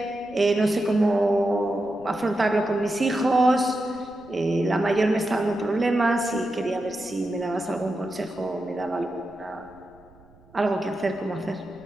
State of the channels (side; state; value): right; noise; rumble, 28 dB below the sound